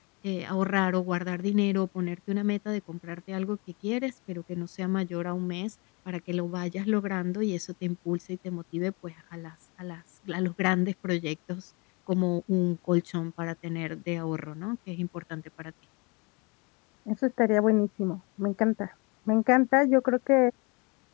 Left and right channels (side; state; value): right; quieter; 29.5 dB